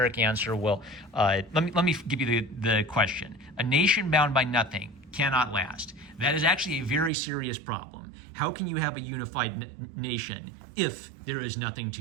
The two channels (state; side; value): drops out; left; at 7.1 s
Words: answer. Well, let me give you the question. A nation bound by nothing cannot last. That is actually a very serious problem. How can you have a unified nation if there is nothing